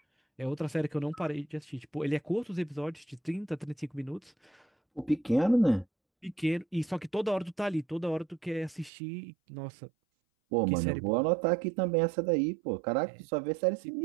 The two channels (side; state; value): left; drops out; at 8.9 s